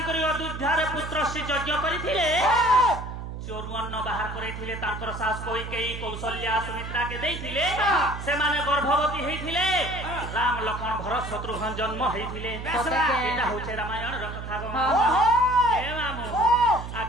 करी अयोध्या रे पुत्र श्री यज्ञ करिथिले चोरुअन्न बाहर करैथिले तांकर सास कैकेयी कौशल्या सुमित्रा के देइथिले से माने गर्भवती हेथिले राम लक्ष्मण भरत शत्रुघ्न जन्म हेथिले एटा होचे रामायण र कथा गो ए मामू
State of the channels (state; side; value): noise; right; hum, 8 dB below the sound